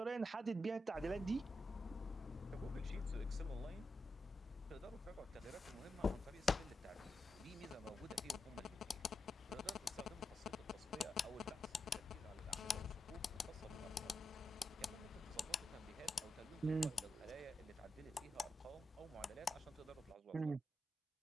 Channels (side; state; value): both; normal; correlation 0.87